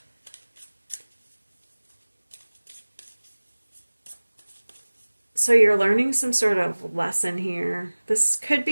so you're learning some sort of lesson here. This could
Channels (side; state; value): both; inverted; correlation -1.00